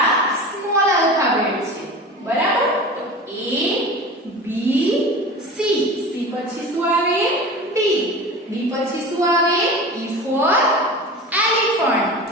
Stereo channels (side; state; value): both; normal; correlation 0.34